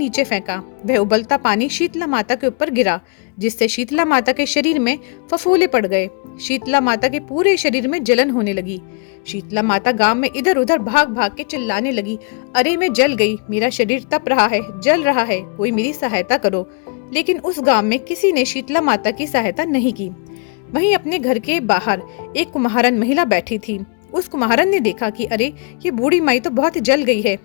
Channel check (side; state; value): right; quieter; 34.7 dB